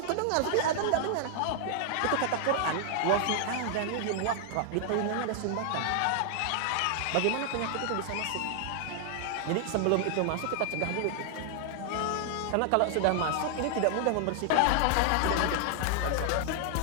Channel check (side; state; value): both; different; correlation 0.00